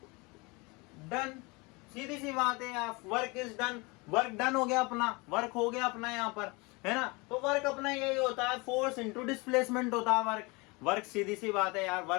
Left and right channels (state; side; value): quieter; right; 26.6 dB